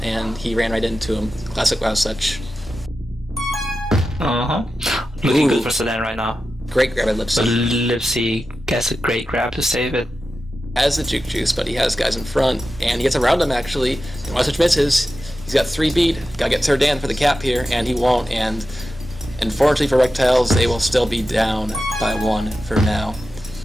and he ran right into him. Classic Wild Such. Looking good for Sedan right now. Great grab by Lipsy. Lipsy gets a great grab to save it. Has the juke juice, but he has guys in front, and he gets around him actually. And Wild Such misses. He's got 3 beat. Gotta get Serdan for the cap here, and he won't. And unfortunately for Rektiles, they will still be down by 1 for now.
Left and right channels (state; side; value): normal; both; correlation 0.92